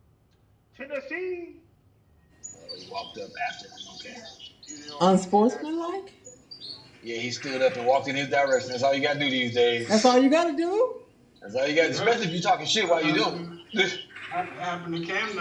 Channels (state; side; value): identical; both; correlation 1.00